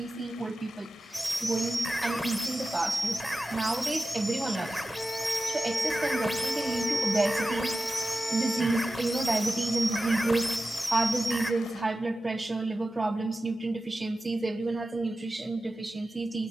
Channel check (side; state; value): both; normal; correlation 0.94